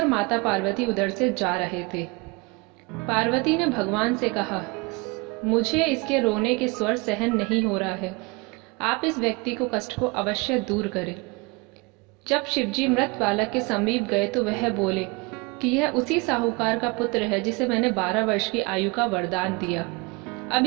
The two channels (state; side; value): quieter; left; 27.0 dB